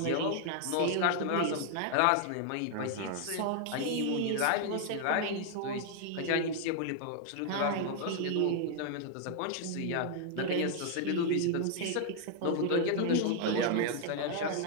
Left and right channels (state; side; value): different; both; correlation 0.00